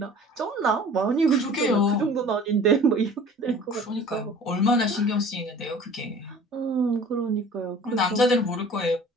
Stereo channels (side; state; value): both; normal; correlation 0.46